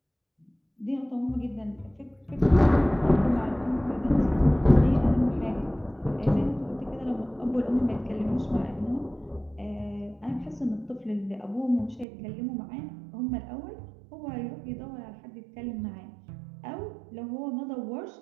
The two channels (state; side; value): drops out; left; at 12.1 s